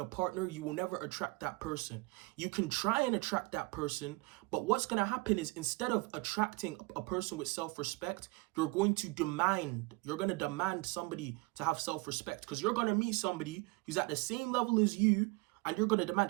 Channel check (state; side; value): quieter; left; 24.5 dB